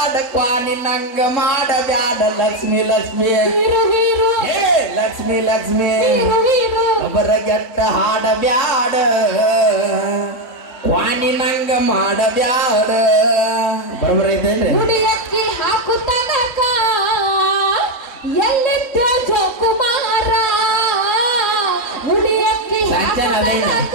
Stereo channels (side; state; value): right; late; 3.7 ms